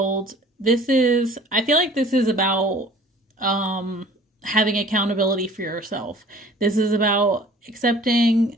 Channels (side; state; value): both; normal; correlation 0.49